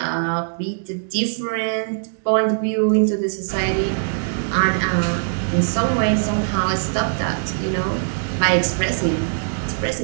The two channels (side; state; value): left; silent; digital silence